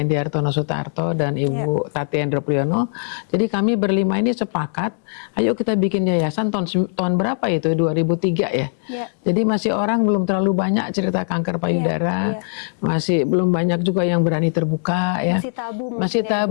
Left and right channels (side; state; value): right; silent; digital silence